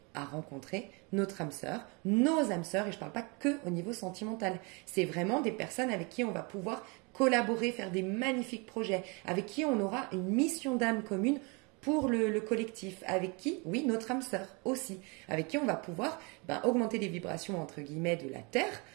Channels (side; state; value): left; quieter; 30.5 dB